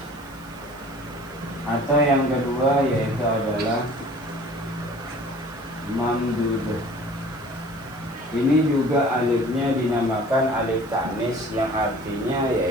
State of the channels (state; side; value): noise; right; hiss, 25 dB below the sound